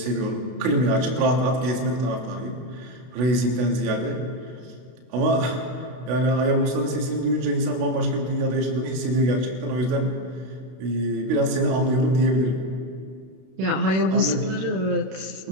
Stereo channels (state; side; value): late; left; 32 ms